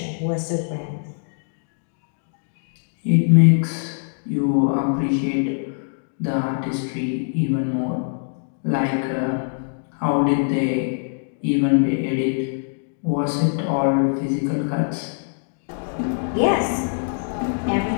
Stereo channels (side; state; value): right; silent; digital silence